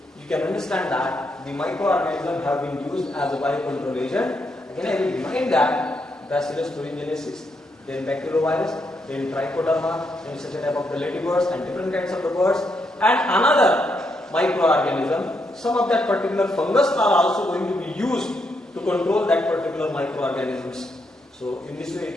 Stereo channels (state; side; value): normal; both; correlation 0.79